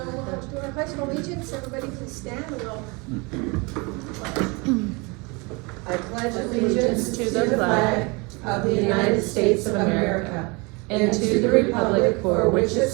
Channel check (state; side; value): quieter; left; 28.3 dB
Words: we'll do our pledge of allegiance. Everybody please stand and we'll. I pledge allegiance to the flag of the United States of America and to the republic for which it